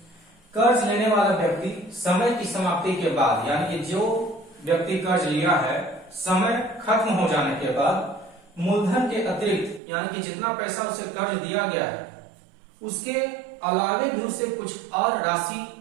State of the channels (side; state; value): left; drops out; at 9.8 s